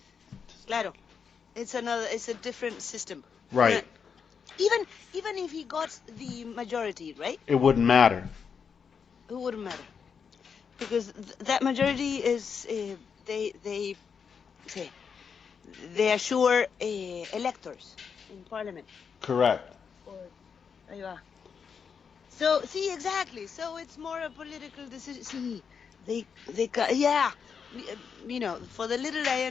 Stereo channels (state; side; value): quieter; right; 6.4 dB